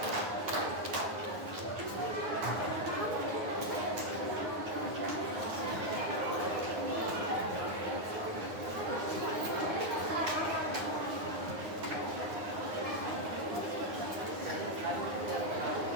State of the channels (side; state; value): left; late; 9.6 ms